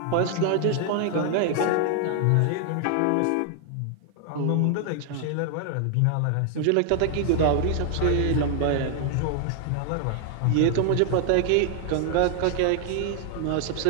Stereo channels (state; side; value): different; both; correlation 0.00